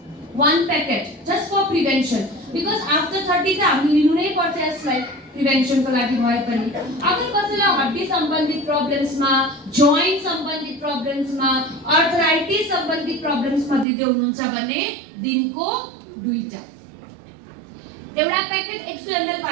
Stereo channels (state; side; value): drops out; left; at 13.9 s